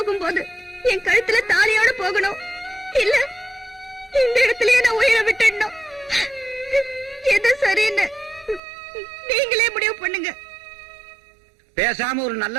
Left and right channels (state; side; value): drops out; left; at 8.6 s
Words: என் கழுத்துல தாலியோட போகணும், இல்ல இந்த இடத்துலயே நான் உயிரை விட்டுடணும். எது சரின்னு நீங்களே முடிவு பண்ணுங்க. பேசாம ஒரு நல்ல